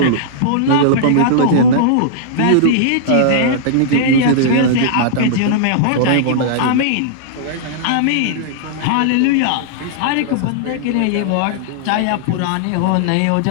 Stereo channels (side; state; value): both; different; correlation -0.02